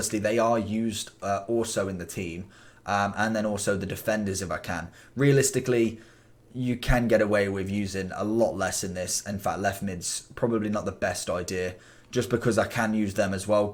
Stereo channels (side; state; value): both; identical; correlation 1.00